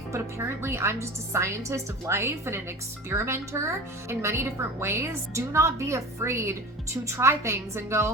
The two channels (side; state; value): both; normal; correlation 0.35